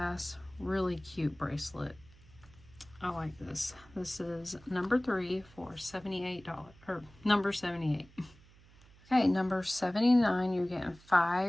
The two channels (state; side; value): noise; right; hum, 25 dB below the sound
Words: Really cute bracelet. I like this. This is number 3 for $78. Or number 78. Okay, number 79, you're getting